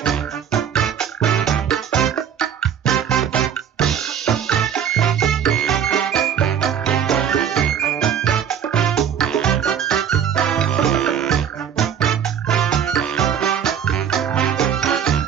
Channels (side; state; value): left; quieter; 8.5 dB